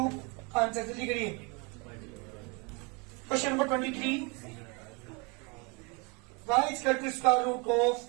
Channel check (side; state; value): left; quieter; 30.5 dB